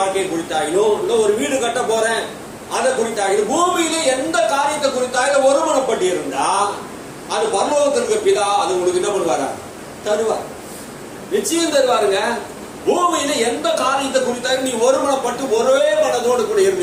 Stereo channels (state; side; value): identical; both; correlation 1.00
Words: குறித்தாகிலும், இல்ல ஒரு வீடு கட்ட போறேன் அதை குறித்தாகிலும், பூமியிலே எந்த காரியத்தை குறித்தாகிலும் ஒருமனப்பட்டு இருந்தா அது பரலோகத்திற்கு பிதா அது உங்களுக்கு என்ன பண்ணுவாரா? தருவார். நிச்சயம் தருவாருங்க. பூமியில எந்த காரியத்தை குறித்தாலும் நீ ஒருமனப்பட்டு ஒரே மனதோடு கூட